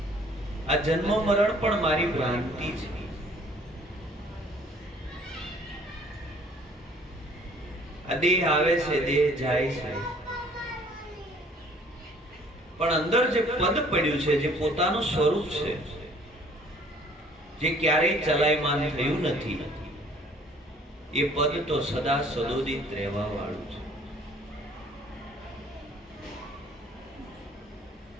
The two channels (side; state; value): both; normal; correlation 0.56